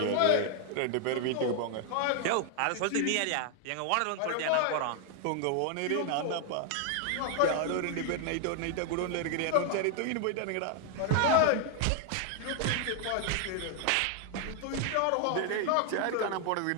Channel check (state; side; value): different; both; correlation 0.00